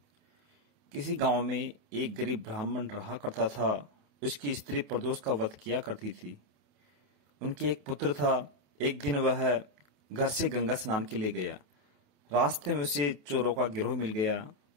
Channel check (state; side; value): late; left; 28 ms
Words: किसी गांव में एक गरीब ब्राह्मण रहा करता था। उसकी स्त्री प्रदोष का व्रत किया करती थी। उनके एक पुत्र था। एक दिन वह घर से गंगा स्नान के लिए गया। रास्ते में उसे चोरों का गिरोह मिल गया।